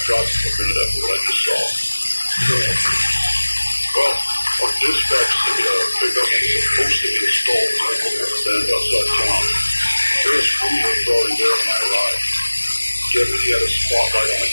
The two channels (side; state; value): both; inverted; correlation -1.00